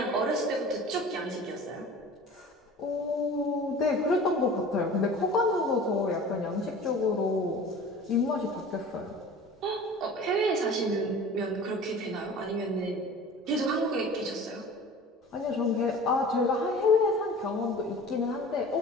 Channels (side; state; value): both; normal; correlation 0.41